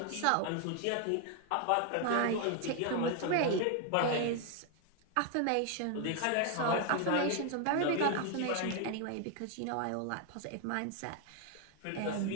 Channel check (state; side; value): different; both; correlation 0.01